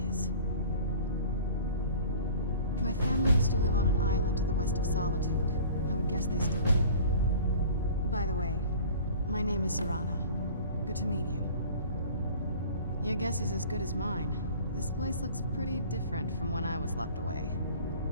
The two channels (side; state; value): both; inverted; correlation -0.44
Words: is. My family used to live on an island to the west of Solitude. I would guess they still do. By the way, my name is Serana. Good to meet you. Your guess is as good as mine. This place looks pretty different from when I was locked away.